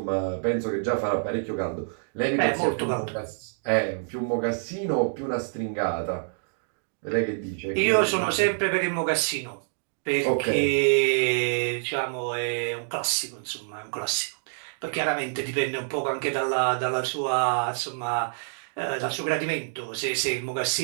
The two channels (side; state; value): left; silent; digital silence